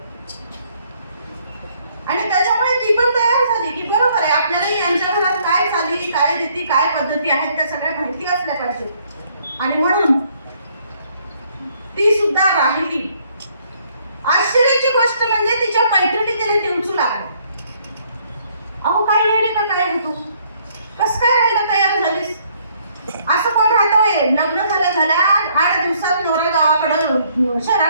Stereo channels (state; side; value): inverted; both; correlation -0.66